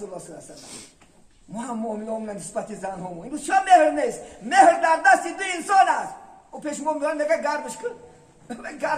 الله صلی الله علیه و سلم. ما هم معامله همون نسبت زن همون این چه مهر نیست. مهر در دست 2 انسان است. او پیش ما میگن نگه گرمش کن،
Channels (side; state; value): both; identical; correlation 1.00